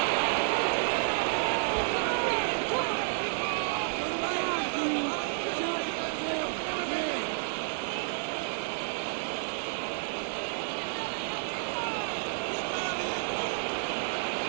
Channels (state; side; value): silent; left; digital silence